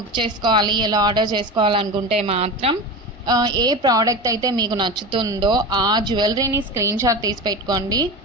చేసుకోవాలి, ఎలా ఆర్డర్ చేసుకోవాలనుకుంటే మాత్రం ఏ ప్రోడక్ట్ అయితే మీకు నచ్చుతుందో ఆ జ్యువెలరీని స్క్రీన్ షాట్ తీసి పెట్టుకోండి.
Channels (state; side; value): normal; both; correlation 0.27